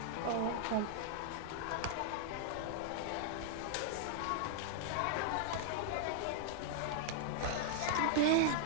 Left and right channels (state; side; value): different; both; correlation -0.01